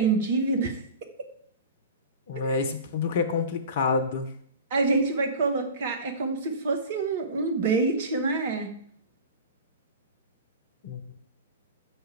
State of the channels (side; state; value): both; inverted; correlation -0.34